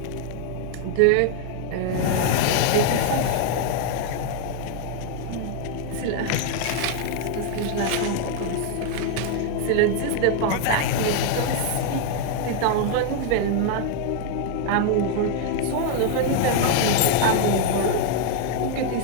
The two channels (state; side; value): different; both; correlation 0.00